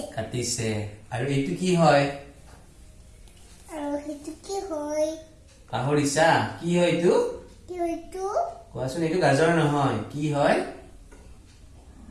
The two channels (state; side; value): identical; both; correlation 1.00